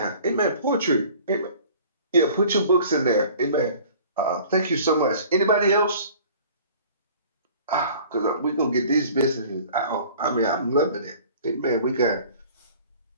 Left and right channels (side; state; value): both; inverted; correlation -0.48